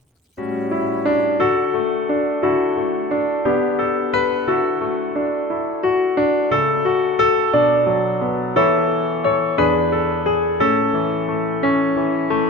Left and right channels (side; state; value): both; normal; correlation 0.46